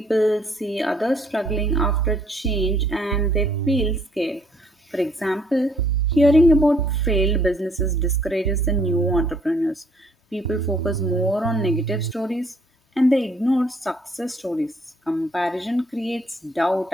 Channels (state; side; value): normal; both; correlation 0.64